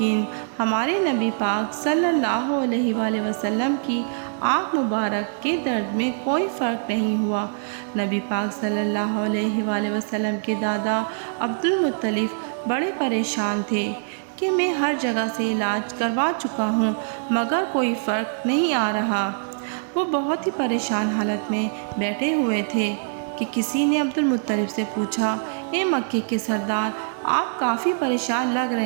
ہمارے نبی پاک صلی اللہ علیہ وآلہ وسلم کی آنکھ مبارک کے درد میں کوئی فرق نہیں ہوا۔ نبی پاک صلی اللہ علیہ وآلہ وسلم کے دادا عبدالمطلب بڑے پریشان تھے کہ میں ہر جگہ سے علاج کروا چکا ہوں مگر کوئی فرق نہیں آ رہا۔ وہ بہت ہی پریشان حالت میں بیٹھے ہوئے تھے کہ کسی نے عبدالمطلب سے پوچھا، اے مکے کے سردار، آپ کافی پریشان لگ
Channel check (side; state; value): left; silent; 63 dB below the other